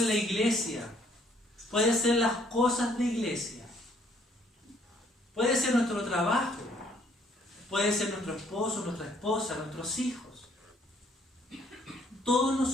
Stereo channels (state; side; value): normal; both; correlation 0.64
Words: iglesia, puede ser las cosas de iglesia, puede ser nuestro trabajo, puede ser nuestro esposo, nuestra esposa, nuestros hijos. Todos